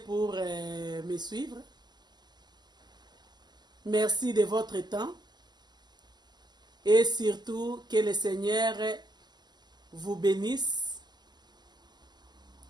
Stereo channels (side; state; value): left; late; 0.21 ms